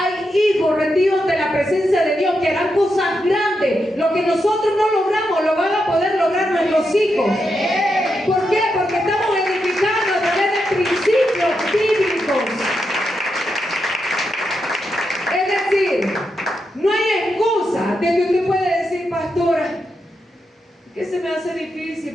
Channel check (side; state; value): both; normal; correlation 0.85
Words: hijos rendidos de la presencia de Dios que harán cosas grandes. Lo que nosotros no logramos, lo van a poder lograr nuestros hijos. ¿Por qué? Porque estamos edificando a través de principios bíblicos. Es decir, no hay excusa de que usted puede decir: pastora, que se me hace